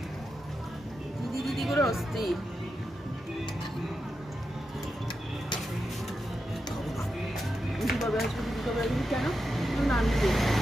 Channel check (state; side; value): normal; both; correlation 0.88